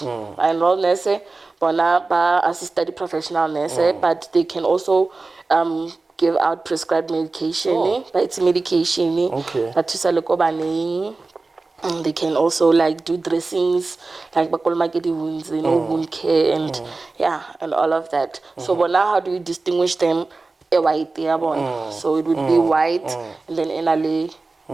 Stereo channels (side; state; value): left; quieter; 3.6 dB